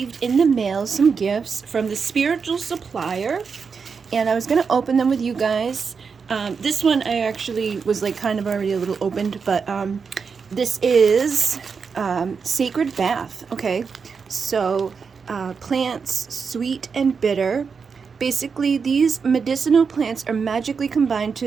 in the mail some gifts from the Spiritual Supplier, and I was going to open them with you guys. This one I actually was like kind of already a little opened, but this is Sacred Bath, okay? So plants, sweet and bitter. Basically, these medicinal plants are magically combined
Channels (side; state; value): left; quieter; 5.6 dB